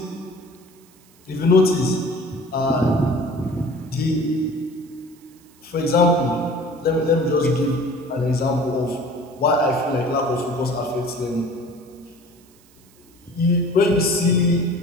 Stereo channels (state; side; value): noise; right; hiss, 29 dB below the sound